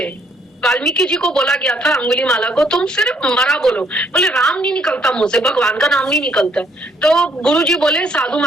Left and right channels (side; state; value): both; normal; correlation 0.67